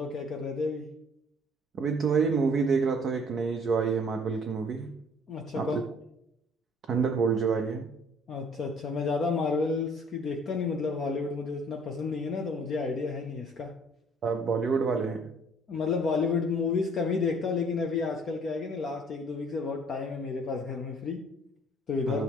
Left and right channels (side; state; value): both; normal; correlation 0.57